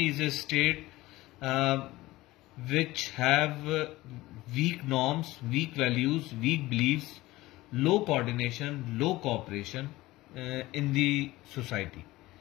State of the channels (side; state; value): right; quieter; 18.4 dB